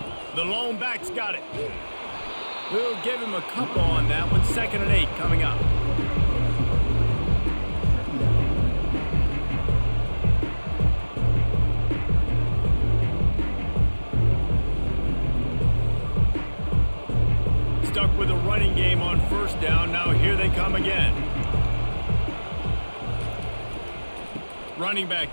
The lone back's got it. We'll give him a couple on that one. 2nd and 8 coming up. Stuck with a running game on first down. Now here they come again. Running back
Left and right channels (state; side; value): inverted; both; correlation -1.00